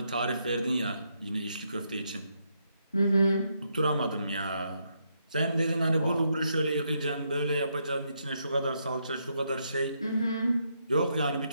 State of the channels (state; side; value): inverted; both; correlation -0.78